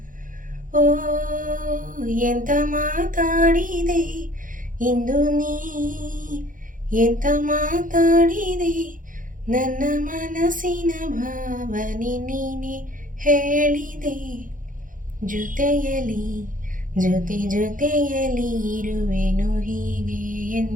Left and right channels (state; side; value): late; left; 0.39 ms